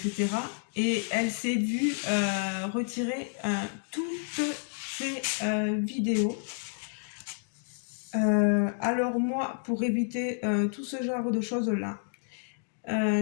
Et elle s'est vue retirer toutes ses vidéos. Alors moi, pour éviter tout ce genre de choses-là,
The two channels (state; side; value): silent; right; 58 dB below the other